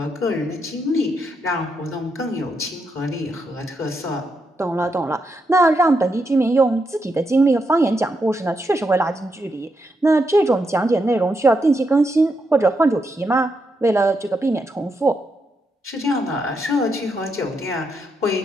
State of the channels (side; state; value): both; normal; correlation 0.82